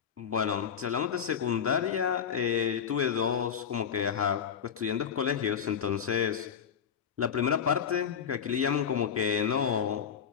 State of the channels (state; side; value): quieter; right; 7.7 dB